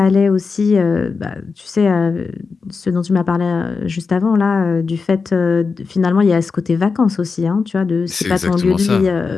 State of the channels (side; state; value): right; quieter; 4.8 dB